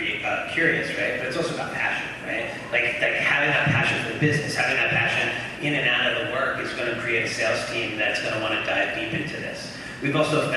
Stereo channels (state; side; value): noise; left; hum, 26 dB below the sound